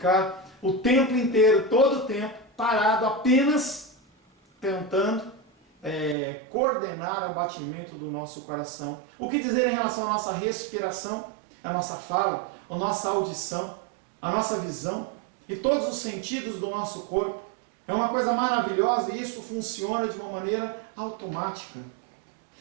o tempo inteiro, todo o tempo, parado, apenas tentando coordenar o batimento do nosso coração. O que dizer em relação à nossa respiração, a nossa fala, a nossa audição, a nossa visão e todos os sentidos do nosso corpo? É uma coisa maravilhosa e isso funciona de uma maneira automática.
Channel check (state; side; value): drops out; left; at 6.2 s